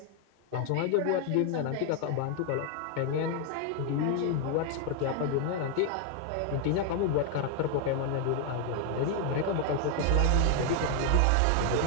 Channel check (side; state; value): both; different; correlation 0.01